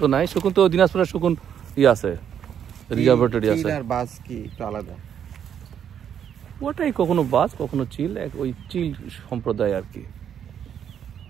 তো নাই, শকুন তো দিনাজপুরের শকুন আছে, রিজার্ভেটরি আছে। আর বাস কি একটু আলাদা? ওটাই কখনো বাস কখনো চিল, ওই চিল সম্প্রদায় আর কি,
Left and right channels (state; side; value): quieter; left; 8.8 dB